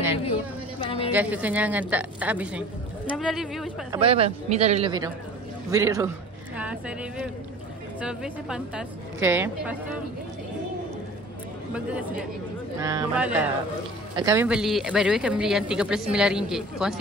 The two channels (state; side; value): normal; both; correlation 0.43